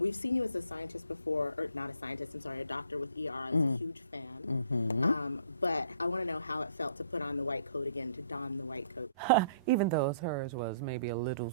seen you as a scientist before, or not a scientist, I'm sorry, a doctor with ER. I was a huge fan. But I want to know how it felt to put on the white coat again, to don the white coat. Even though hers was maybe a little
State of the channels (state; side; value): inverted; both; correlation -0.62